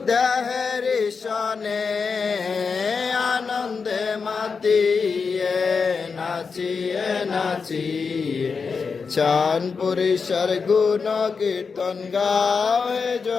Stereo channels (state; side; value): quieter; right; 5.2 dB